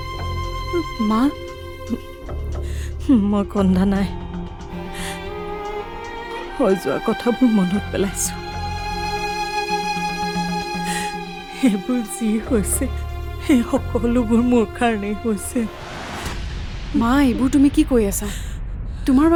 মা, মই কন্দা নাই, হৈ যোৱা কথাবোৰ মনত পেলাইছো। সেইবোৰ যি হৈছে সেই সকলোবোৰ মোৰ কাৰণেই হৈছে। মা, এইবোৰ তুমি কি কৈ আছা? তোমাৰ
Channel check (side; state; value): both; identical; correlation 1.00